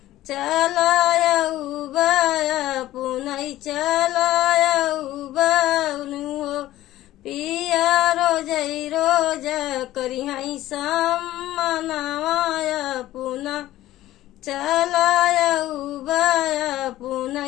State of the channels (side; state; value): right; quieter; 15.0 dB